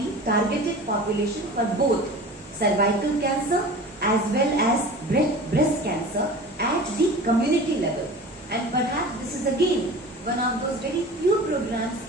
targeted population for both cervical cancer as well as breast cancer at the community level. And perhaps this is again one of those very few programs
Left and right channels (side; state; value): both; normal; correlation 0.38